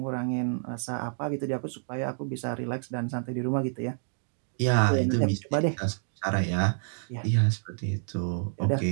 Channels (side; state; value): left; silent; digital silence